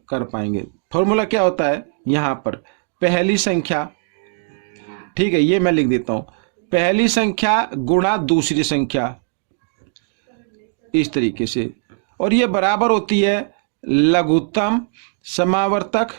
कर पाएंगे। फॉर्मूला क्या होता है? यहाँ पर पहली संख्या, ठीक है, ये मैं लिख देता हूँ, पहली संख्या गुणा दूसरी संख्या, इस तरीके से, और ये बराबर होती है लघुत्तम समावर्तक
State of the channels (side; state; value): left; silent; 66 dB below the other